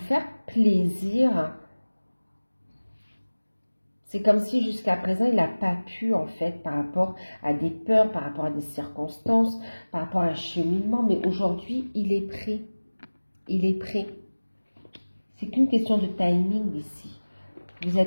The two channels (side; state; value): both; inverted; correlation -1.00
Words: faire plaisir. C'est comme si jusqu'à présent, il n'a pas pu, en fait, par rapport à des peurs, par rapport à des circonstances, par rapport à un cheminement. Mais aujourd'hui, il est prêt. Il est prêt. C'est qu'une question de timing ici. Vous